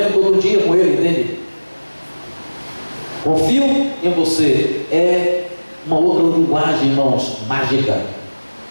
outro dia com ele, entende? Confio em você. É uma outra linguagem, irmãos, mágica.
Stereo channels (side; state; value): both; inverted; correlation -1.00